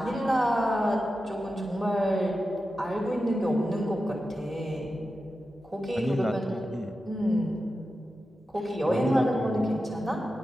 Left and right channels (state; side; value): normal; both; correlation 0.91